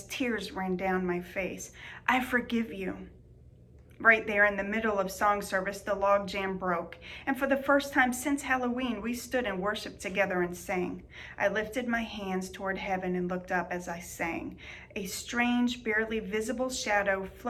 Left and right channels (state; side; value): identical; both; correlation 1.00